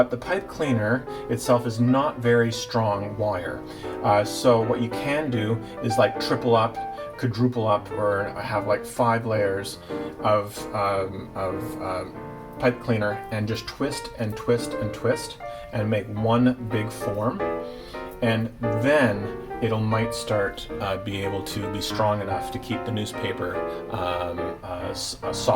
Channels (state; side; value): identical; both; correlation 1.00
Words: the pipe cleaner itself is not very strong wire. So what you can do is like triple up, quadruple up, or have like 5 layers of pipe cleaner, and just twist and twist and twist and make one big form, and then it'll might start be able to be strong enough to keep the newspaper